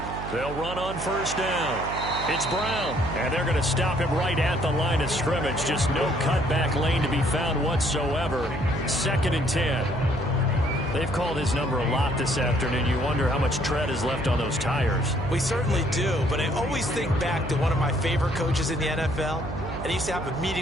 They'll run on 1st down. It's Brown, and they're going to stop him right at the line of scrimmage. Just no cutback lane to be found whatsoever. 2nd and 10. They've called his number a lot this afternoon. You wonder how much tread is left on those tires. We certainly do, but I always think back to one of my favorite coaches in the NFL, and he used to have a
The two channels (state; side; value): noise; right; hum, 8 dB below the sound